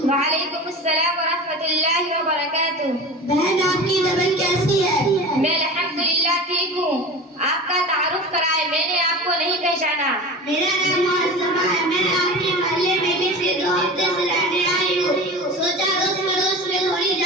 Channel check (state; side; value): normal; both; correlation 0.33